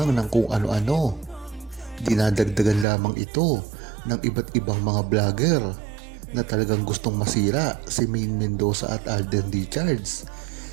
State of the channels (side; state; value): left; drops out; at 2.9 s